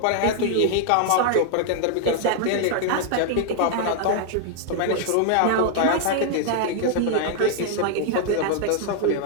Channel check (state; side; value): different; both; correlation 0.00